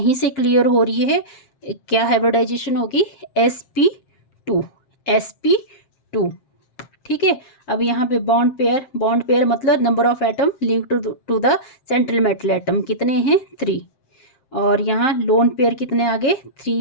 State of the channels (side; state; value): right; late; 7.5 ms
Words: से क्लियर हो रही है। क्या हाइब्रिडाइजेशन होगी? sp2। ठीक है, अब यहाँ पे बॉन्ड पेयर मतलब number of atom link to the central metal atom कितने हैं? 3। और यहाँ लोन पेयर कितने आ गए?